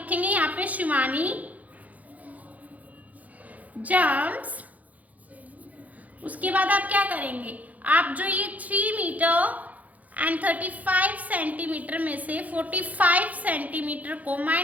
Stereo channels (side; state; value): left; late; 0.076 ms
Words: यहाँ पे शिवानी जंप्स। उसके बाद आप क्या करेंगे, आप जो ये 3 मीटर एंड 35 सेंटीमीटर में से 45 सेंटीमीटर को